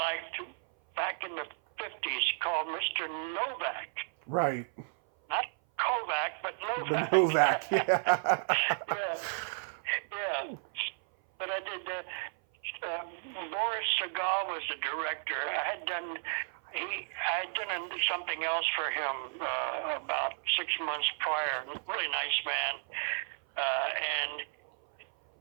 back in the 50s called Mr. Novak. Right. Not Kovac, but Novak. Novak, yeah. Yeah. But I did. Boris Segal was the director. I had done something else for him about 6 months prior. Really nice man, and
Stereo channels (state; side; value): silent; left; 56 dB below the other